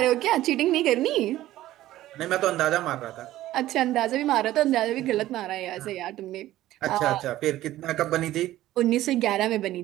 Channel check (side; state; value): left; quieter; 14.8 dB